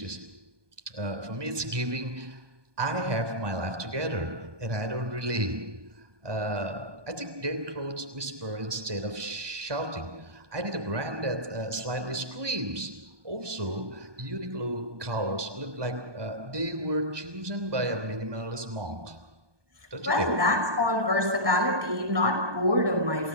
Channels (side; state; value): left; late; 1.2 ms